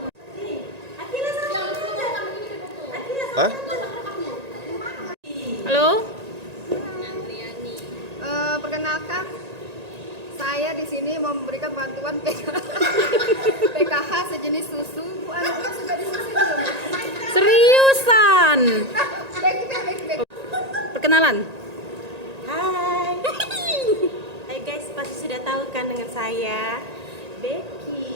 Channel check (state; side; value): late; left; 1.9 ms